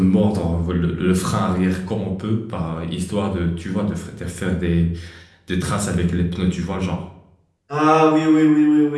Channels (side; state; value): both; identical; correlation 1.00